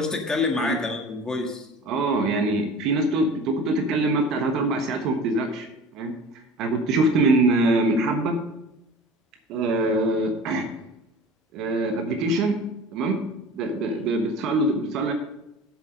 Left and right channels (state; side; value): normal; both; correlation 0.40